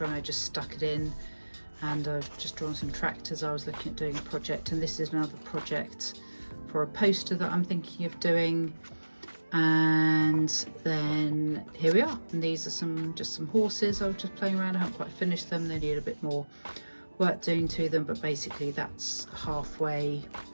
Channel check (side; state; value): both; inverted; correlation -1.00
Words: and I just stuck it in. And I've just drawn some tractors. I was looking at doing a project, and this is another project for a poster that I'm thinking of doing. And then here we are, and these are just some horses I was just playing around. I haven't quite finished them, they need a bit more work doing to them, but basically that's halfway